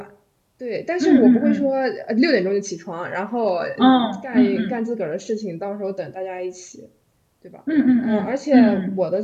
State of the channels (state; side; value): identical; both; correlation 1.00